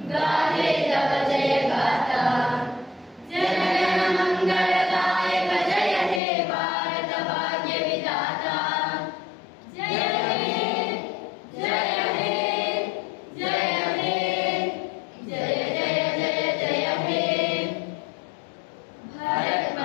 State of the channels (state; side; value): drops out; right; at 6.2 s